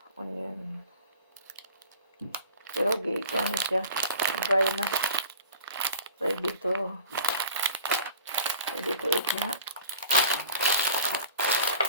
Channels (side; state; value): both; inverted; correlation -0.43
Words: Onion. Pero gikan siya. Dry na. Ready to eat na.